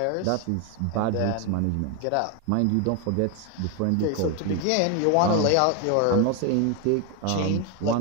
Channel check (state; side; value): different; both; correlation 0.01